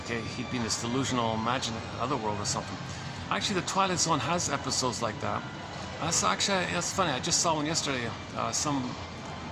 He'd be in this delusional, imaginary otherworld or something. Actually, the Twilight Zone has episodes like that. That's funny. I just saw one yesterday. Some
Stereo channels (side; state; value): both; identical; correlation 1.00